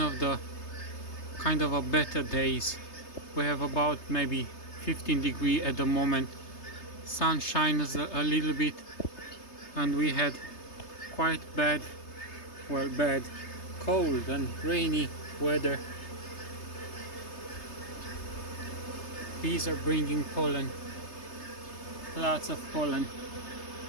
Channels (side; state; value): right; late; 3.3 ms